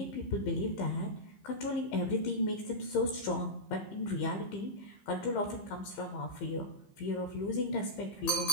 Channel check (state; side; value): late; right; 15 ms